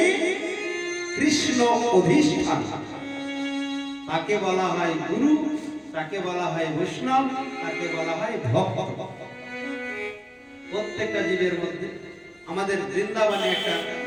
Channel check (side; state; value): both; identical; correlation 1.00